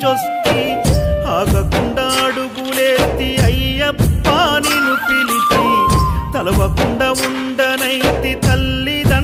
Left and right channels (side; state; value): both; identical; correlation 1.00